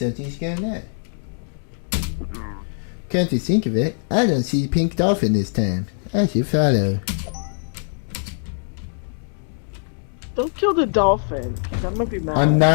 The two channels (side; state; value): right; silent; digital silence